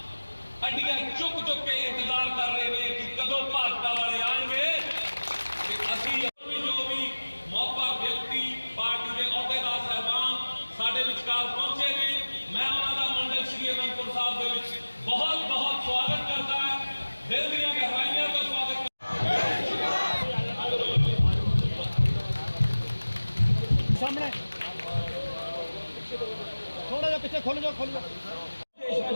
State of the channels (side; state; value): both; inverted; correlation -1.00